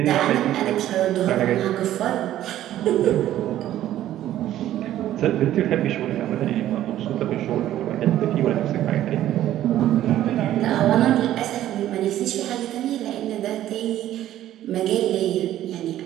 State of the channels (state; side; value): quieter; left; 12.9 dB